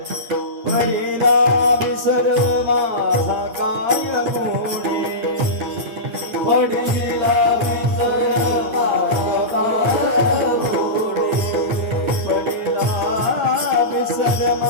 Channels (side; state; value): left; late; 8.6 ms